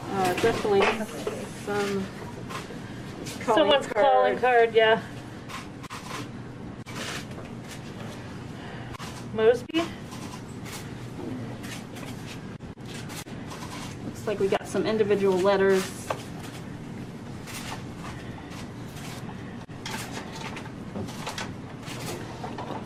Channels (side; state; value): both; identical; correlation 1.00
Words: Definitely some Someone's calling card, yeah. Mosby? Looks like we got some individual letters.